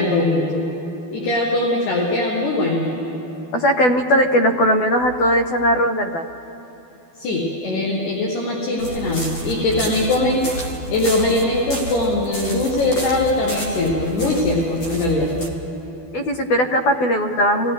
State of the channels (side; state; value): right; late; 12 ms